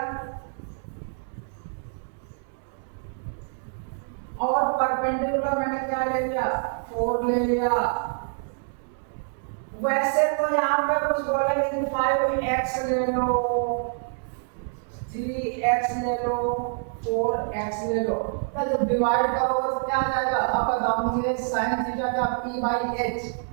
और परपेंडिकुलर मैंने क्या ले लिया 4 ले लिया। वैसे तो यहाँ पे कुछ बोलेंगे कि 5x ले लो, 3x ले लो, 4x ले लो, तो जब डिवाइड करोगे तो क्या आ जाएगा, अब बताओ मुझे sin थीटा का p बाई h,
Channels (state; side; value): silent; left; 61 dB below the other